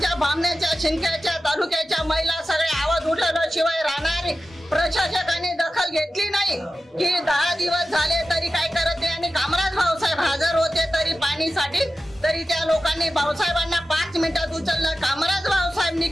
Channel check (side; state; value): both; normal; correlation 0.94